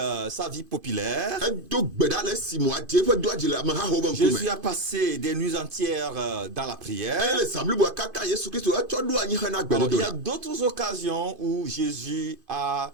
sa vie populaire. Edo gbe ɖa le si mo aɖe eƒe dɔa dzi le amehawo ƒe ŋkume. Jésus a passé des nuits entières dans la prière. Eye le zã bliboa katã Yesu Kristo etsɔ ɖo anyi hena Alors, il y a gbedodoɖa. d'autres occasions où Jésus a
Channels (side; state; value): left; late; 2.5 ms